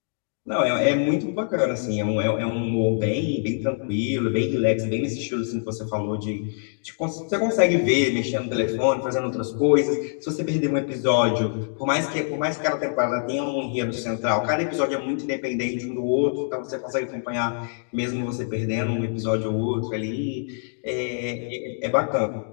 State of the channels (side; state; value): right; silent; digital silence